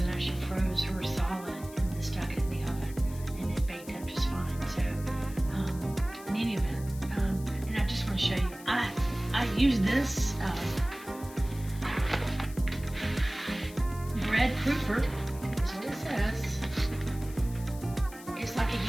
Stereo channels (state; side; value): noise; left; hiss, 18 dB below the sound